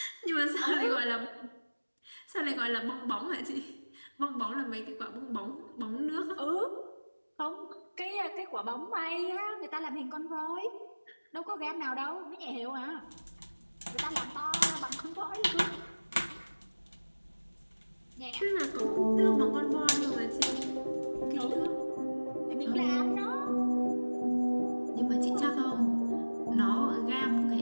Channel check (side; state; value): both; inverted; correlation -1.00